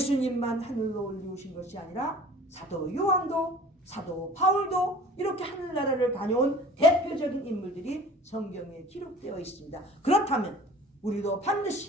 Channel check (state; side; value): normal; both; correlation 0.46